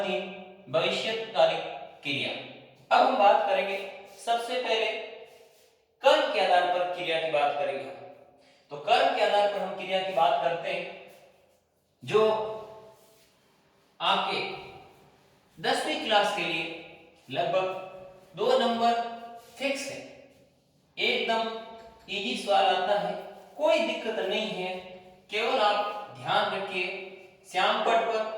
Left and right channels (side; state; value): both; identical; correlation 1.00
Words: तीन, भविष्यकालिक क्रिया। अब हम बात करेंगे सबसे पहले कर्म के आधार पर क्रिया की बात करेंगे। तो कर्म के आधार पर हम क्रिया की बात करते हैं। जो आपके 10वीं क्लास के लिए लगभग 2 नंबर फिक्स है, एकदम इजी सवाल आता है, कोई दिक्कत नहीं है। केवल आप ध्यान रखिए, श्याम पट पर